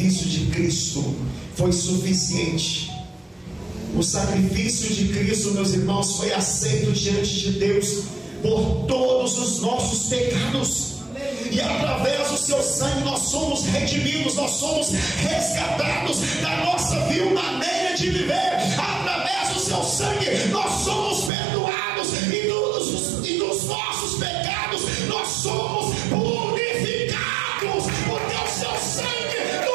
de Cristo foi suficiente. O sacrifício de Cristo, meus irmãos, foi aceito diante de Deus por todos os nossos pecados. E através do seu sangue nós somos redimidos, nós somos resgatados da nossa vil maneira de viver. Através do seu sangue nós somos perdoados, e dos nossos pecados nós somos purificados, porque o seu sangue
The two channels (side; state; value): left; drops out; at 21.3 s